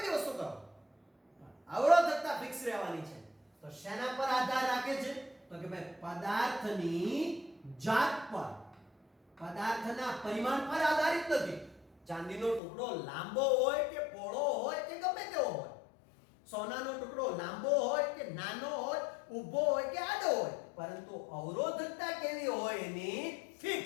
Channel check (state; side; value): drops out; right; at 12.6 s